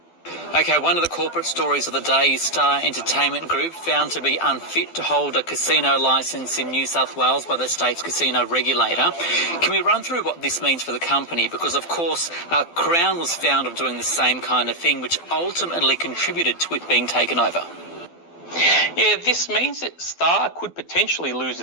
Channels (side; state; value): right; late; 12 ms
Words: Okay, one of the corporate stories of the day is Star Entertainment Group found to be unfit to hold a casino licence in New South Wales by the state's casino regulator. Can we run through what this means for the company? Because, of course, Crown was found of doing the same kind of thing, which ultimately contributed to it being taken over. Yeah, this means that Star could potentially lose